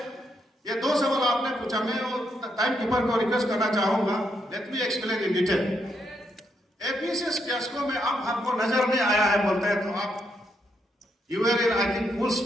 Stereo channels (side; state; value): both; normal; correlation 0.78